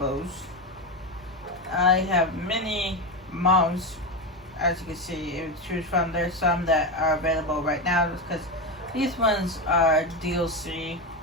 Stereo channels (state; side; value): normal; both; correlation 0.15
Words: I have many mounts, as you can see, to choose from. There's some that are available right now because these ones are DLC